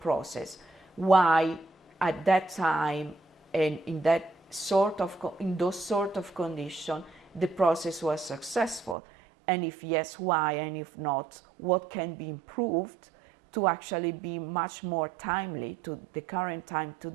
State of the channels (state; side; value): drops out; left; at 9.0 s